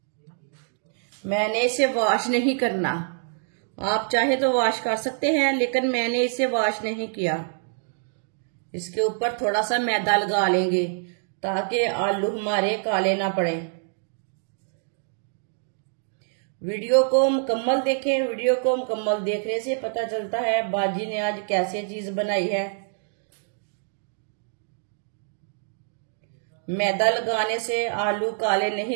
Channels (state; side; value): silent; left; digital silence